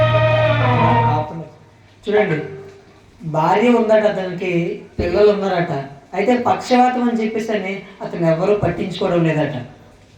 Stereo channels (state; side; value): identical; both; correlation 1.00